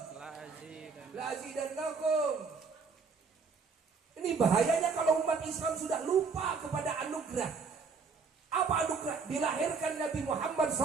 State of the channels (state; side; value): quieter; left; 5.0 dB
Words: la azidannakum. Ini bahayanya kalau umat Islam sudah lupa kepada anugerah. Apa anugerah? Dilahirkan Nabi Muhammad